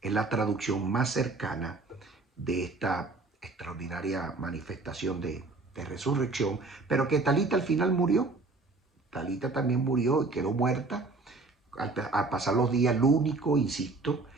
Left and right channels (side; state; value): left; quieter; 3.5 dB